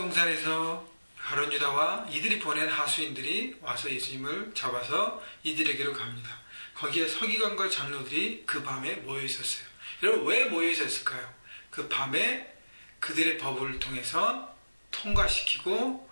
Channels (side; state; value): both; inverted; correlation -1.00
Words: 가룟 유다와 이들이 보낸 하수인들이 와서 예수님을 잡아서 이들에게로 갑니다. 거기에 서기관과 장로들이 그 밤에 모여있었어요. 여러분, 왜 모여있었을까요? 그 밤에 그들의 법을 통해서 통과시키고